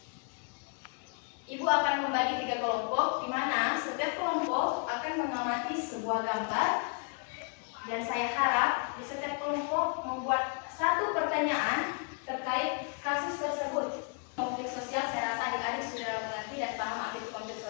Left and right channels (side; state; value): right; quieter; 38.7 dB